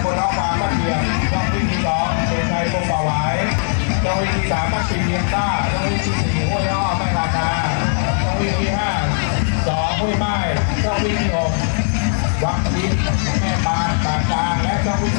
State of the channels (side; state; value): right; silent; 61 dB below the other